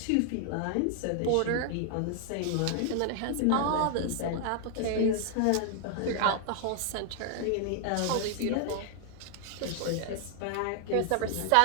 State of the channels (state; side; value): different; both; correlation 0.00